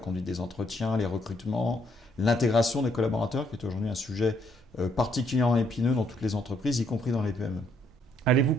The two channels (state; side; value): normal; both; correlation 0.70